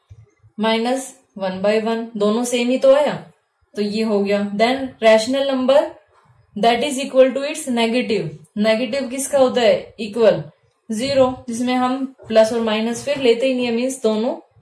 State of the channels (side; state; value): both; identical; correlation 1.00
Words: -1/1, दोनों सेम ही तो आया, तो ये हो गया। Then rational number that is equal to its negative, negative किसका होता है, इक्वल, 0, जिसमें हम प्लस और माइनस फिर लेते ही नहीं है, मीन्स दोनों